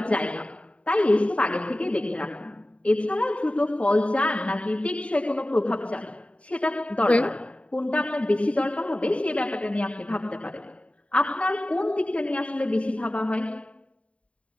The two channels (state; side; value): late; right; 0.063 ms